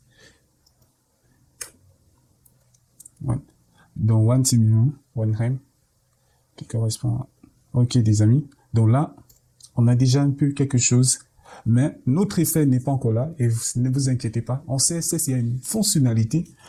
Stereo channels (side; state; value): both; identical; correlation 1.00